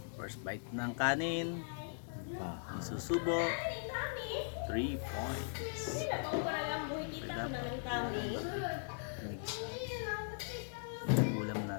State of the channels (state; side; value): silent; right; digital silence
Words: first bite ng kanin, isusubo, 3 points. Dapat ulam